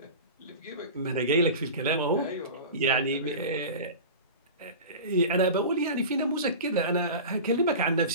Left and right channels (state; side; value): inverted; both; correlation -0.32